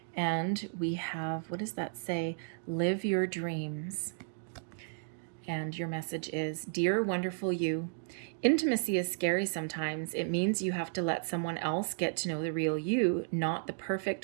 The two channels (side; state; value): left; silent; digital silence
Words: And we have, what does that say? Live your dreams. And your message is, Dear wonderful you, intimacy is scary sometimes. It means you have to let someone else get to know the real you, not the